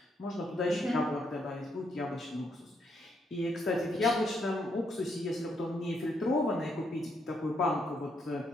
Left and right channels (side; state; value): both; normal; correlation 0.76